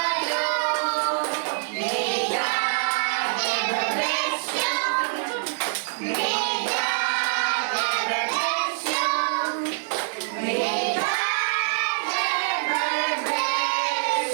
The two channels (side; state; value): left; silent; 62 dB below the other